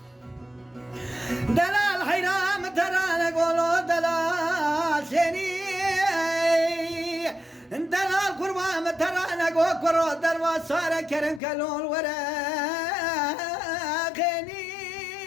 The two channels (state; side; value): drops out; right; at 11.4 s